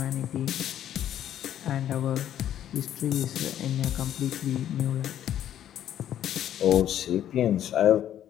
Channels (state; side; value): quieter; right; 11.0 dB